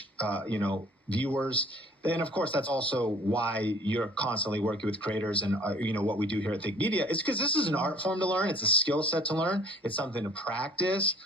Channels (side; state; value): both; normal; correlation 0.53